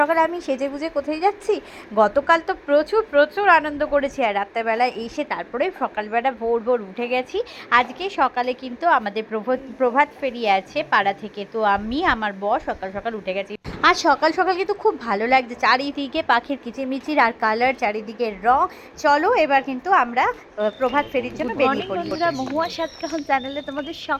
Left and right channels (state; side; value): identical; both; correlation 1.00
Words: আমি সেজে গুজে কোথায় যাচ্ছি? গতকাল তো প্রচুর প্রচুর আনন্দ করেছি, আর রাত্রেবেলা এসে তারপরে সকালবেলা ভোর ভোর উঠে গেছি। আজকে সকালে কিন্তু আমাদের প্রভাত ফেরি আছে পাড়া থেকে, তো আমি আমার বর সকাল সকাল উঠে গেছি। আর সকাল সকাল কিন্তু খুব ভালো লাগছে, চারিদিকে পাখির কিচিরমিচির আর কালার, চারিদিকে রং। চলো এবার কিন্তু আমরা প্রভাত ফেরির জন্য বেরিয়ে পড়ি। বন্ধুরা, মহুয়া সাতকাহন চ্যানেলে তোমাদের